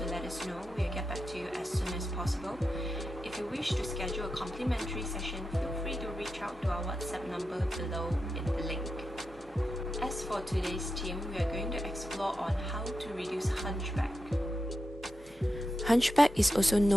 let us know. We'll get back to you as soon as possible. If you wish to schedule a complimentary session, feel free to reach out to our WhatsApp number below in the link. As for today's theme, we are going to explore on how to reduce hunchback. Hunchback is also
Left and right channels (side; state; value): both; normal; correlation 0.89